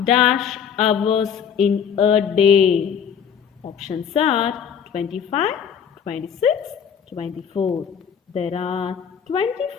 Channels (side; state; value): right; quieter; 7.7 dB